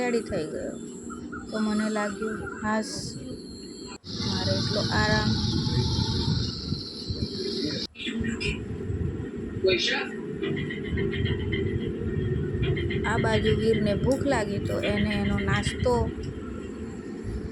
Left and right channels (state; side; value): identical; both; correlation 1.00